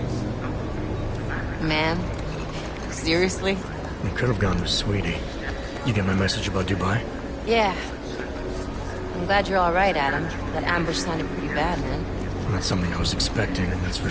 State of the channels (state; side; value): identical; both; correlation 1.00